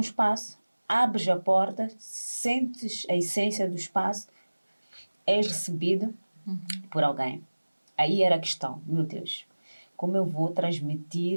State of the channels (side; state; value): both; inverted; correlation -1.00